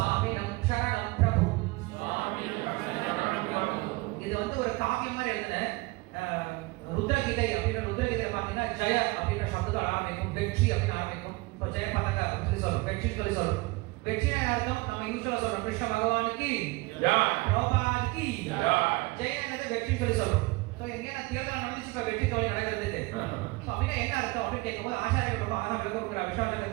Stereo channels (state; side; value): quieter; left; 23.6 dB